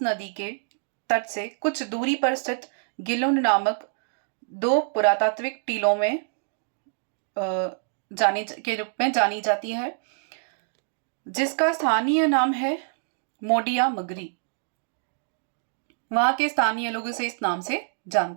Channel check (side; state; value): left; silent; digital silence